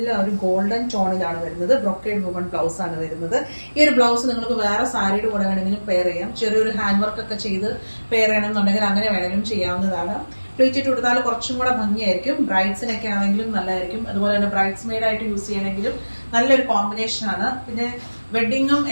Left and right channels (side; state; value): both; inverted; correlation -1.00